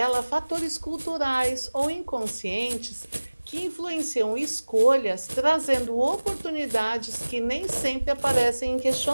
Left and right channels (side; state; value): both; inverted; correlation -1.00